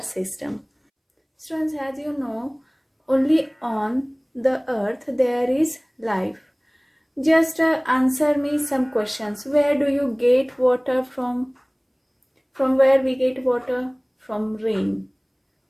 Students, as you know, only on the earth there is life. Just answer me some questions. Where do you get water from? From where we get water? From rain.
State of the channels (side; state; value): both; identical; correlation 1.00